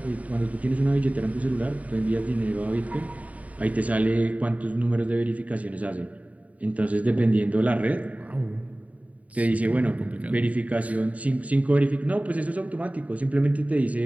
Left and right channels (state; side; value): late; left; 0.069 ms